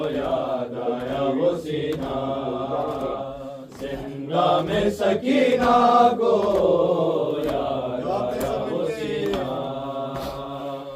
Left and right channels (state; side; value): identical; both; correlation 1.00